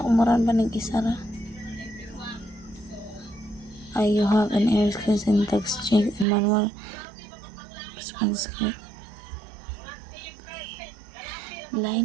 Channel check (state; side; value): drops out; left; at 6.2 s